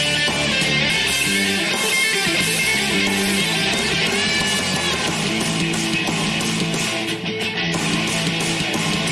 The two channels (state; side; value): identical; both; correlation 1.00